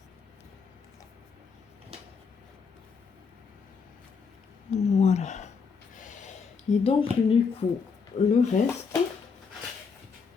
Voilà. Et donc, du coup, le reste,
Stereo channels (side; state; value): right; quieter; 5.5 dB